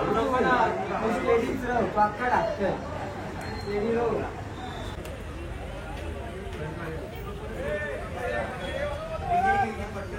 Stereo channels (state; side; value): identical; both; correlation 1.00